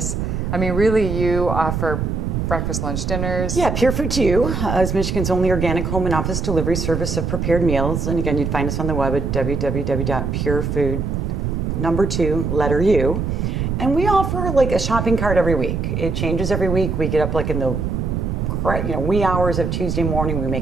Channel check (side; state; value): right; noise; rumble, 1 dB below the sound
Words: I mean, really, you offer breakfast, lunch, dinners. Yeah, Pure Food to You is Michigan's only organic home and office delivery service of prepared meals. And again, you'd find us on the web at www.purefood2u. And we offer, like, a shopping cart every week. It changes every week. We get up, like, in the wee hours of Tuesday morning. We